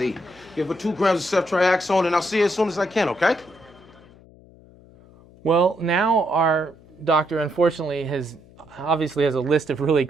Give her 2 grams of ceftriaxone, and I'll see her as soon as I can, okay? Well, now our doctor, unfortunately, obviously has a list of really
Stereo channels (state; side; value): noise; left; hum, 25 dB below the sound